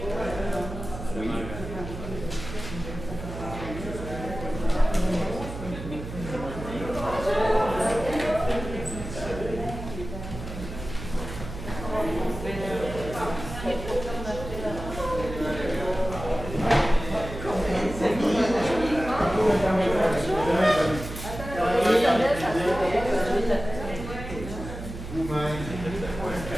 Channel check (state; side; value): noise; right; hum, 9 dB below the sound